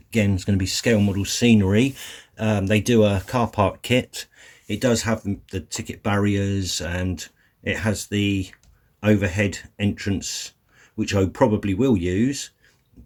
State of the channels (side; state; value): both; identical; correlation 1.00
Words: going to be scale model scenery. They do a car park kit. It does have the ticket barriers, and it has the overhead entrance, which I probably will use.